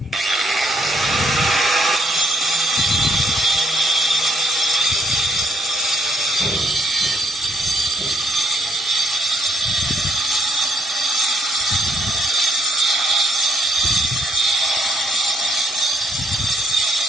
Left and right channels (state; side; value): normal; both; correlation 0.74